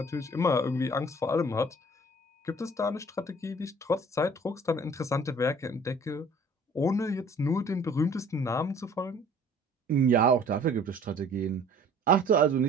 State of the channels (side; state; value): both; normal; correlation 0.51